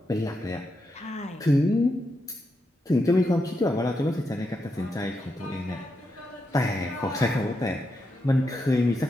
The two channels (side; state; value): both; normal; correlation 0.84